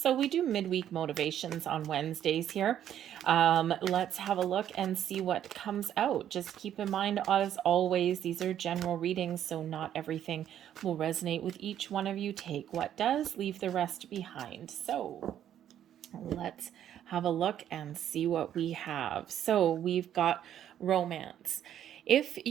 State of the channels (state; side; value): quieter; left; 10.6 dB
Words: we do midweek motivations on Wednesdays here. Let's have a look and see what comes out. Just keep in mind, as always, these are general readings, so not everything will resonate with each one of you. Take what does, leave the rest behind. So let's have a look and see what we have. So we've got romance. If